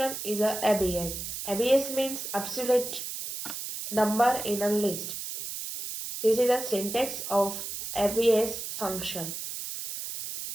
is a ABS. ABS means absolute number in a list. This is a syntax of ABS function.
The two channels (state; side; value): noise; right; hiss, 6 dB below the sound